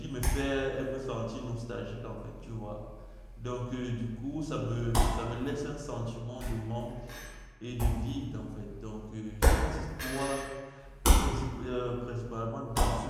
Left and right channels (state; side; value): identical; both; correlation 1.00